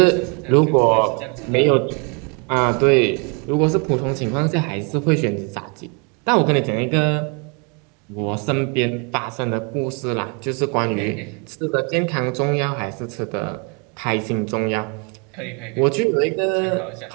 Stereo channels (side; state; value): left; quieter; 34.2 dB